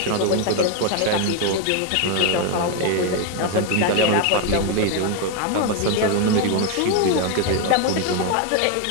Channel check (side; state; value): both; different; correlation 0.01